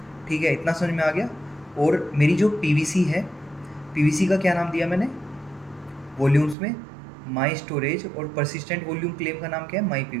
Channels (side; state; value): left; drops out; at 6.6 s